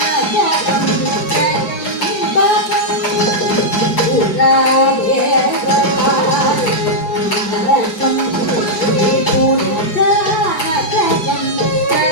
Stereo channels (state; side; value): late; right; 4.5 ms